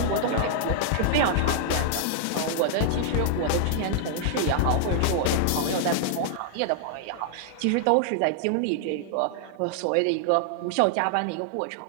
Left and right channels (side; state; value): both; different; correlation -0.01